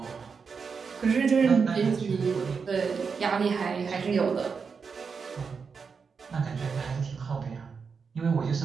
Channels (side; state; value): left; quieter; 5.5 dB